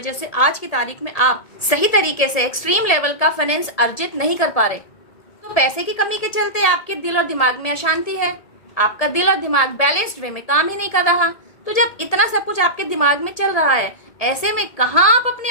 से आज की तारीख में आप सही तरीके से एक्सट्रीम लेवल का फाइनेंस अर्जित नहीं कर पा रहे। तो पैसे की कमी के चलते आपके दिल और दिमाग में अशांति है, आपका दिल और दिमाग बैलेंस्ड वे में काम ही नहीं कर रहा। तो जब इतना सब कुछ आपके दिमाग में चल रहा है, ऐसे में कहाँ आप अपनी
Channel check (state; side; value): late; right; 1.7 ms